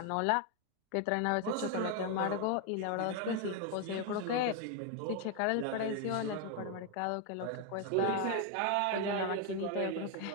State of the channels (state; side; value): different; both; correlation 0.01